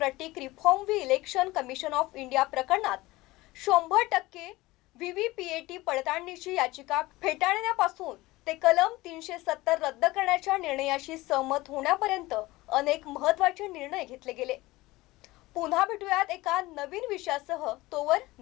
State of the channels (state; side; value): quieter; right; 19.6 dB